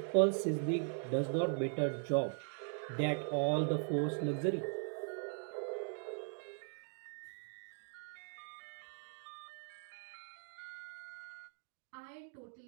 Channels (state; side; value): silent; left; 51 dB below the other